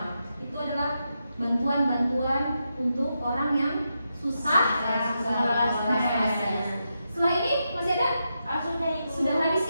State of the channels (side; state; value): both; inverted; correlation -0.85